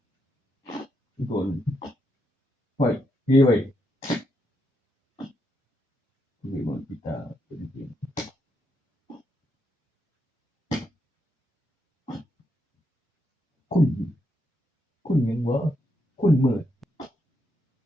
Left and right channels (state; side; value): normal; both; correlation 0.80